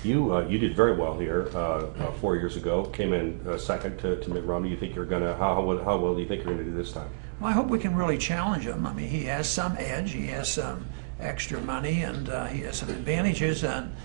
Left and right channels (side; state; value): left; quieter; 35.1 dB